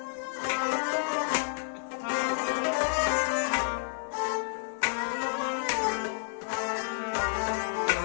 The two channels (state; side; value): silent; right; 56 dB below the other